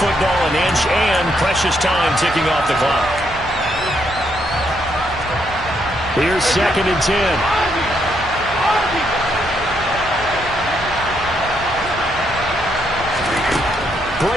football an inch, and precious time ticking off the clock. Here's 2nd and 10.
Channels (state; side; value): noise; right; hum, 18 dB below the sound